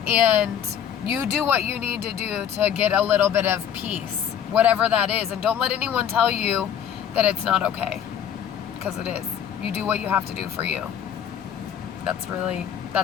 And you do what you need to do to get a little bit of peace, whatever that is. And don't let anyone tell you that it's not okay, because it is. You do what you have to do for you. That's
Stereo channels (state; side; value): quieter; right; 8.9 dB